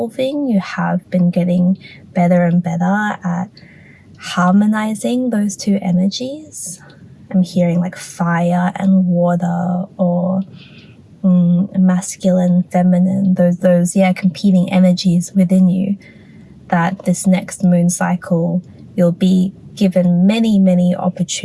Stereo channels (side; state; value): both; identical; correlation 1.00